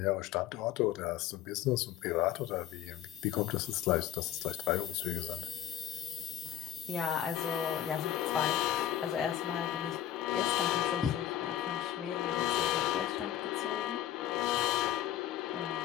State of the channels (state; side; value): quieter; right; 11.6 dB